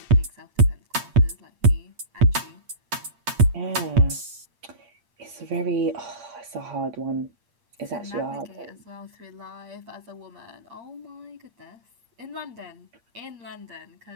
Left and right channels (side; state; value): left; late; 8.6 ms